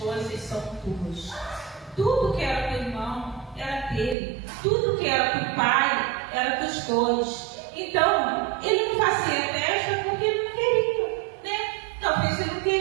são tuas. Tudo que era do irmão era dele, tudo que era do pai era dos dois. Então, ele não fazia festa porque ele não queria, né? Talvez ele não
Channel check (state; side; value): drops out; left; at 4.2 s